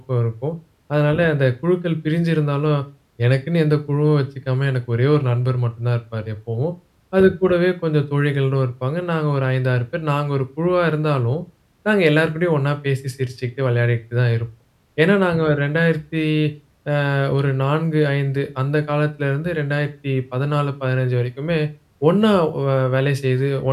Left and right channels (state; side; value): identical; both; correlation 1.00